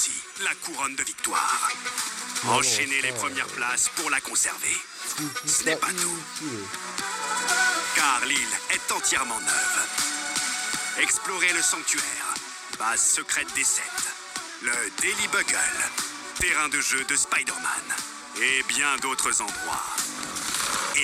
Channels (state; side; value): identical; both; correlation 1.00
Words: la couronne de victoire. Enchaînez les premières places pour la conserver. Ce n'est pas tout, car l'île est entièrement neuve. Explorez le sanctuaire, base secrète des 7, le Daily Bugle, terrain de jeu de Spider-Man, et bien d'autres endroits.